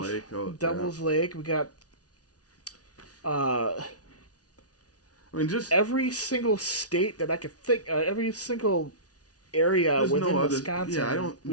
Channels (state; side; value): late; right; 0.68 ms